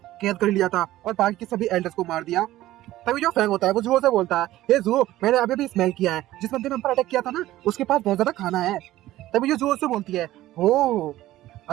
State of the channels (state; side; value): quieter; left; 15.4 dB